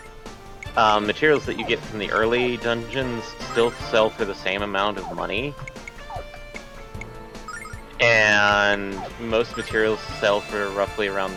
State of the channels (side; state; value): both; identical; correlation 1.00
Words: materials that you get from the early dungeons still sell for the same amount of money. and most materials sell for roughly around